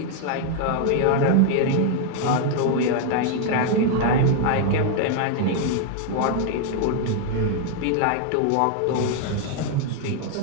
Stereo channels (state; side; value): different; both; correlation 0.00